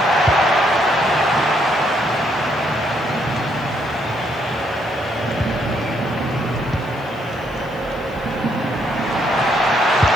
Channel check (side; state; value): left; noise; hiss, 28 dB below the sound